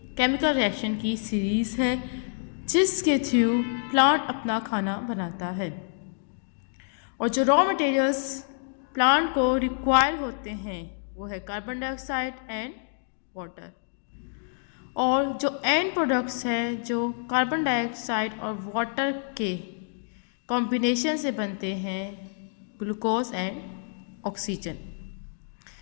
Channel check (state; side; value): silent; right; digital silence